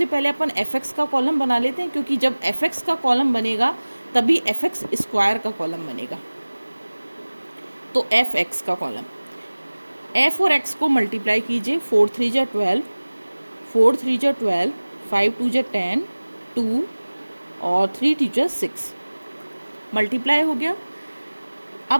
पहले अपन एफ एक्स का कॉलम बना लेते हैं, क्योंकि जब एफ एक्स का कॉलम बनेगा तभी एफ एक्स स्क्वायर का कॉलम बनेगा। तो एफ एक्स का कॉलम, एफ और एक्स को मल्टीप्लाई कीजिए। 4 3 जा 12, 4 3 जा 12, 5 2 जा 10, 2 और 3 2 जा 6 मल्टीप्लाई हो गया।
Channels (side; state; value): both; inverted; correlation -1.00